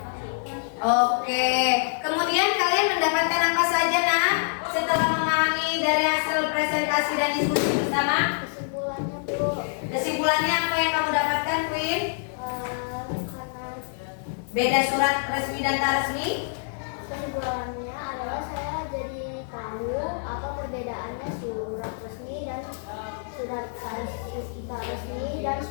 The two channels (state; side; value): silent; right; digital silence